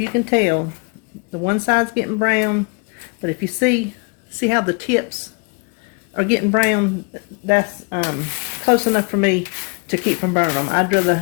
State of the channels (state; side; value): quieter; right; 32.2 dB